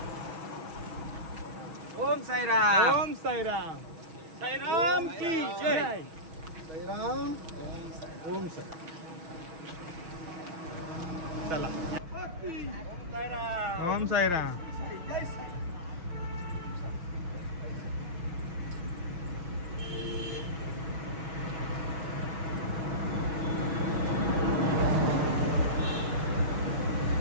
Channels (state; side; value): late; left; 6.2 ms